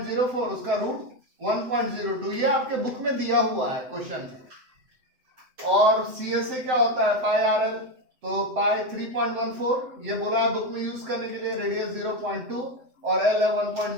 उसका रूट 1.02, ये आपके बुक में दिया हुआ है क्वेश्चन में। और CSA क्या होता है पाई RL, तो पाई 3.14, ये बोला है बुक में यूज करने के लिए। रेडियस 0.2 और L है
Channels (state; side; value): late; left; 7.9 ms